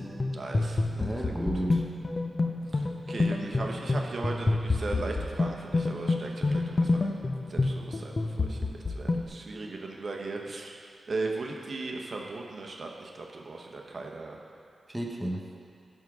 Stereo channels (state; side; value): normal; both; correlation 0.94